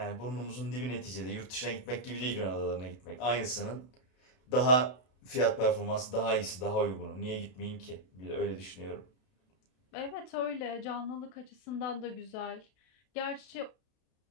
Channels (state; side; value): late; right; 32 ms